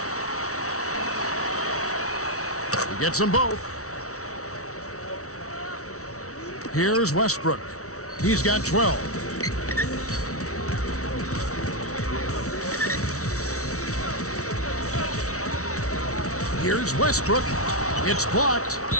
He gets them both. Here's Westbrook. He's got 12. Here's Westbrook. It's blocked.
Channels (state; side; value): late; right; 0.64 ms